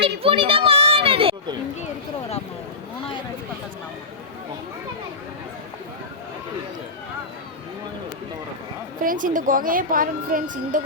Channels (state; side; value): quieter; right; 3.7 dB